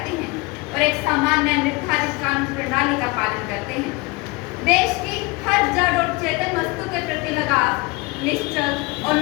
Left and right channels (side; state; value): right; quieter; 25.5 dB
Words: हैं और एक सामान्य निर्धारित कानून प्रणाली का पालन करते हैं। देश की हर जड़ और चेतन वस्तु के प्रति लगाव, निश्चल और